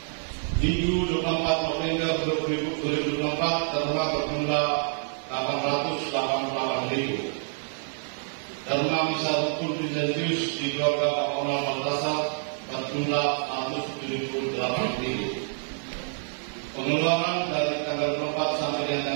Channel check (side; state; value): left; silent; 60 dB below the other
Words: Minggu 24 November 2024 terima berjumlah 888.000. Terima misa rukun Vincentius di keluarga Bapak Onal Baltasar berjumlah 178.000. Pengeluaran dari tanggal 24 sampai